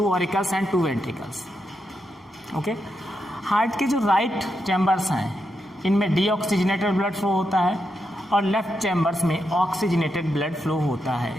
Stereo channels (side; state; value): both; normal; correlation 0.84